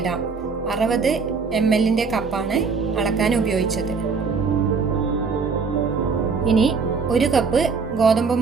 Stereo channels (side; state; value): left; quieter; 5.0 dB